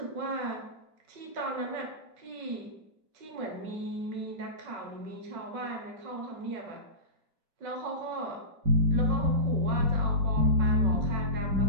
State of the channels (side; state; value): left; late; 5.3 ms